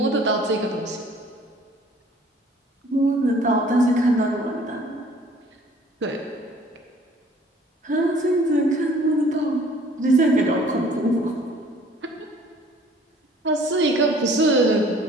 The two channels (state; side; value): normal; both; correlation 0.54